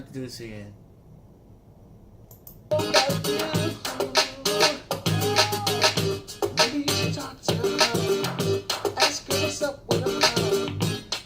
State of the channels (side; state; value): both; identical; correlation 1.00